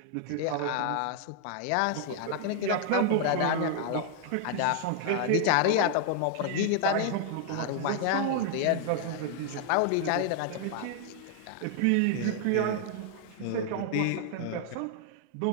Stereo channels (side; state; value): both; different; correlation 0.00